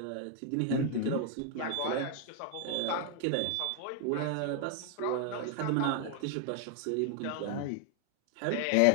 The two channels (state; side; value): different; both; correlation 0.00